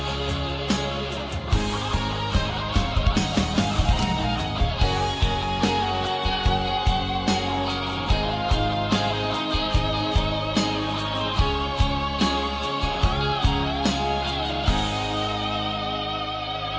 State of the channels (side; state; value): both; identical; correlation 1.00